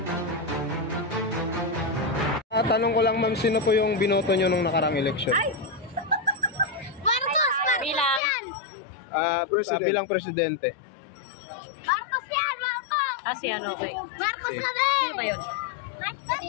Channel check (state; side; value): drops out; right; at 8.2 s